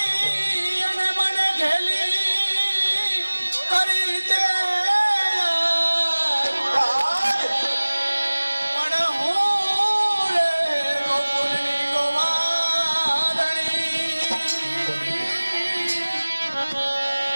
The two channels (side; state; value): both; inverted; correlation -1.00